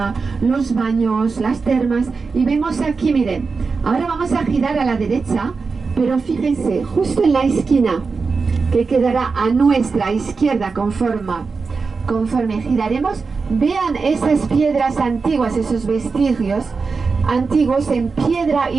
los baños, las termas. Y vemos aquí, miren, ahora vamos a girar a la derecha, pero fíjense, justo en la esquina que quedará a nuestra izquierda conforme giraremos, Vean esas piedras antiguas, esos vestigios antiguos en piedra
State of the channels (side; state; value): left; quieter; 4.6 dB